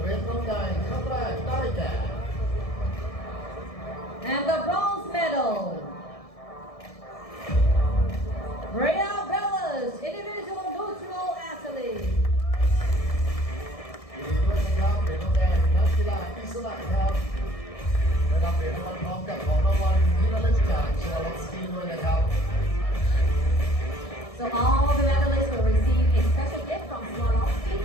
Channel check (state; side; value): late; right; 1.6 ms